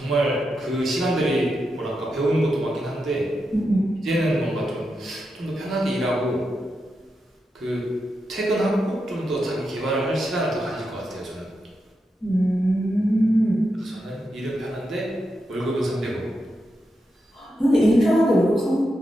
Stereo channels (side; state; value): both; normal; correlation 0.86